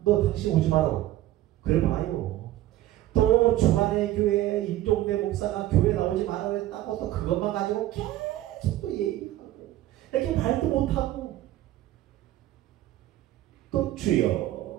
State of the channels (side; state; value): left; quieter; 14.6 dB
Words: 너 당신 오지 마라. 그래 봐요. 또 주간의 교회 임종대 목사가 교회 나오지 말아야 했다고 또 그것만 가지고 계속 또 얘기하고 이렇게 말도 못하고 또 주여